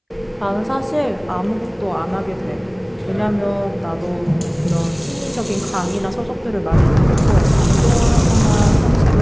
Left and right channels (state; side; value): identical; both; correlation 1.00